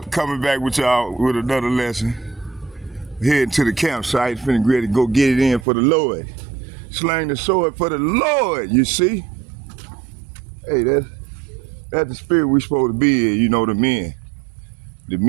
Coming back with y'all with another lesson. Heading to the campsite. Finna ready to go get it in for the Lord. Slang the sword for the Lord, you see? Hey, that's the spirit we supposed to be in, you know, the men. The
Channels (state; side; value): drops out; left; at 5.7 s